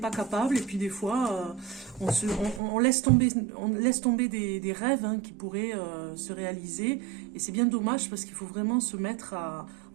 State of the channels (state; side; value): drops out; left; at 2.6 s